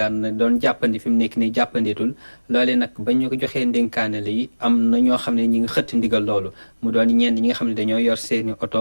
na doon jàppandi fi mu nekk nii jàppanditul loole nag ba ñu ko joxee ndénkaane li am na ñoo xam ne ñi ngi xëtt ndigal loolu mu doon ñenn ñi nga xam ne dañoo yor seeni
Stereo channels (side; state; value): both; inverted; correlation -1.00